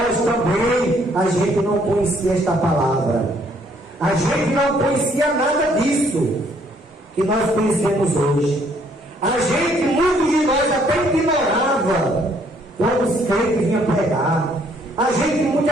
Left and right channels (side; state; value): both; normal; correlation 0.65